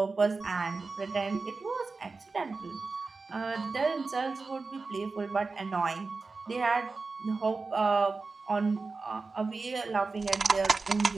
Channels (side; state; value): left; quieter; 4.0 dB